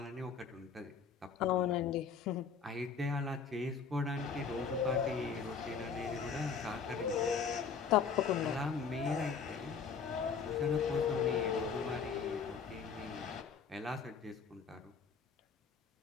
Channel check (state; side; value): quieter; right; 5.9 dB